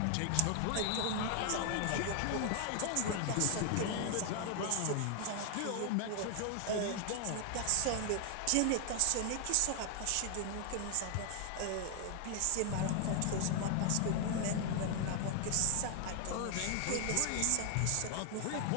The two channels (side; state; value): both; different; correlation 0.00